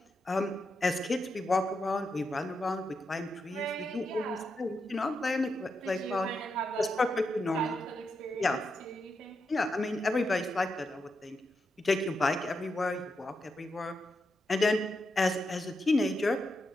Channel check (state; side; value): normal; both; correlation 0.85